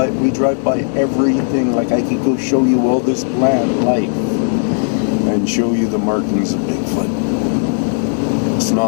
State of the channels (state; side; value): silent; right; 56 dB below the other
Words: drive by everything. Like I could go show you all this plant life and show you the markings of Bigfoot. It's